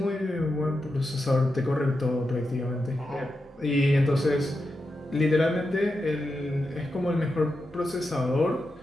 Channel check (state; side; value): normal; both; correlation 0.88